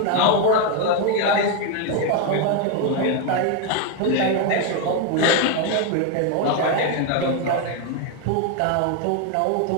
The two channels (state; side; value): different; both; correlation 0.01